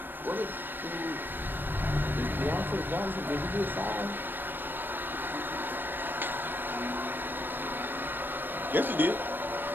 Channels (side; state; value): left; late; 0.094 ms